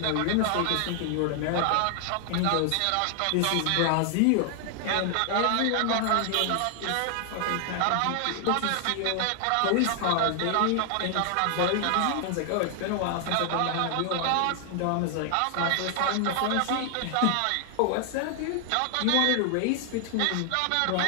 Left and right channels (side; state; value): both; different; correlation 0.00